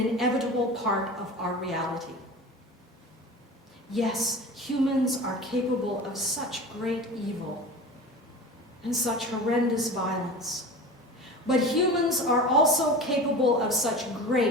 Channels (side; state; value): both; normal; correlation 0.34